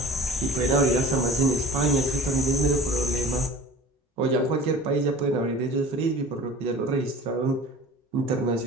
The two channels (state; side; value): normal; both; correlation 0.41